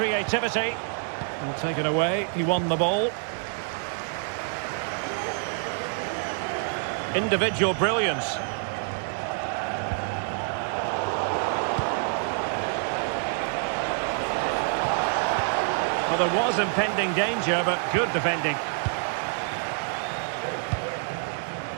Well, taken away, he won the ball. Individual brilliance. Well, there was impending danger, but good defending.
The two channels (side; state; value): left; silent; 56 dB below the other